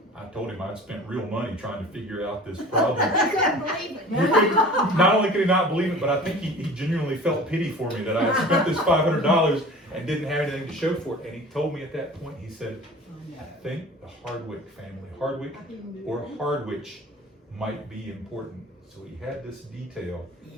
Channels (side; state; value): both; normal; correlation 0.41